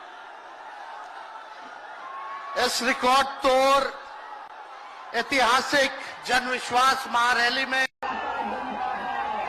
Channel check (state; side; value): identical; both; correlation 1.00